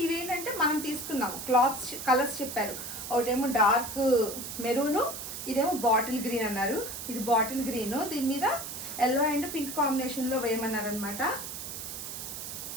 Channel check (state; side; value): noise; right; hiss, 8 dB below the sound